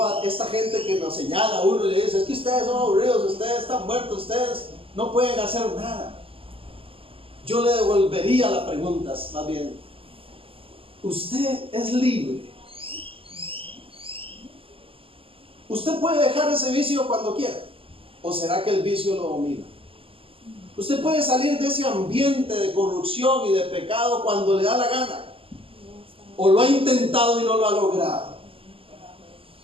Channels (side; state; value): left; late; 0.26 ms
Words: a esta gente que nos señala a uno y le dice, es que ustedes son aburridos, ustedes están muertos, ustedes no pueden hacer nada. Yo le devolvería la pregunta, más bien, ¿usted es libre? ¿Usted puede dejar ese vicio cuando quiera? ¿O será que el vicio lo domina? ¿Usted puede salir de ese ambiente de corrupción y de pecado cuando le da la gana? ¿O lo ha intentado y no lo ha logrado?